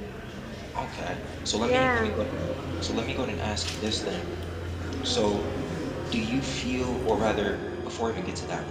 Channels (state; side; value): identical; both; correlation 1.00